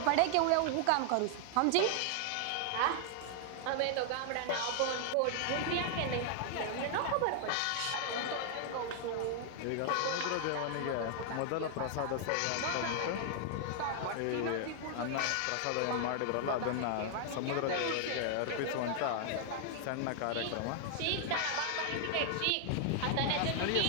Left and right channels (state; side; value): different; both; correlation 0.00